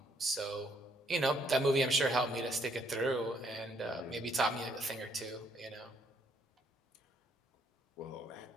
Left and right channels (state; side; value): normal; both; correlation 0.69